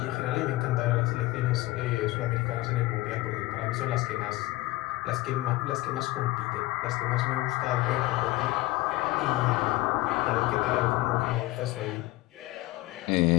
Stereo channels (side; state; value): right; quieter; 18.9 dB